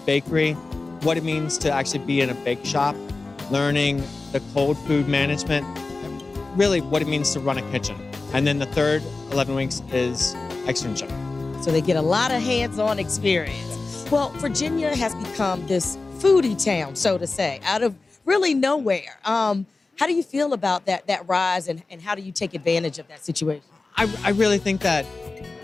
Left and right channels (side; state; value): right; quieter; 3.6 dB